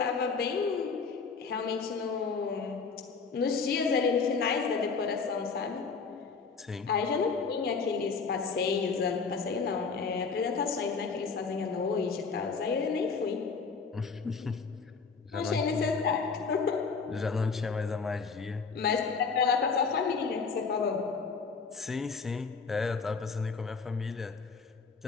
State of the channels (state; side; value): quieter; right; 5.1 dB